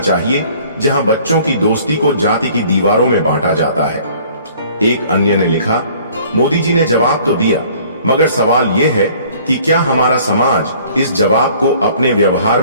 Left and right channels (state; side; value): inverted; both; correlation -0.54